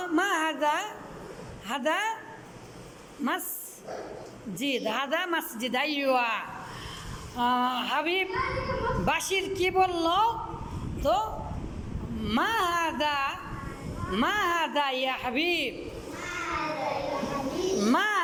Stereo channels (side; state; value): both; identical; correlation 1.00